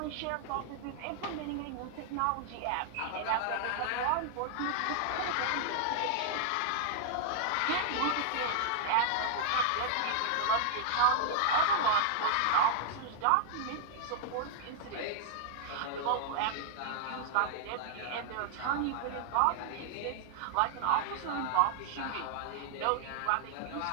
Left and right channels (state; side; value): different; both; correlation 0.00